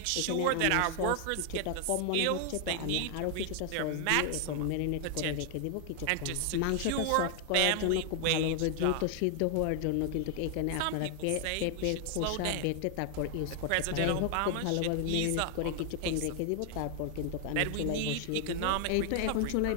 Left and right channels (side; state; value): both; different; correlation 0.00